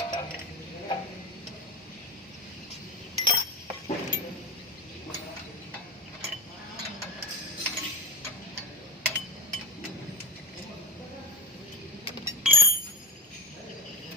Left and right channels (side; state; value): both; normal; correlation 0.22